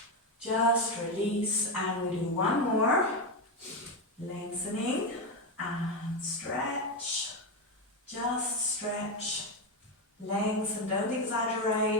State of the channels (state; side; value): normal; both; correlation 0.10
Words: just release, and we do one more, lengthening and stretch, just stretch, lengthen, don't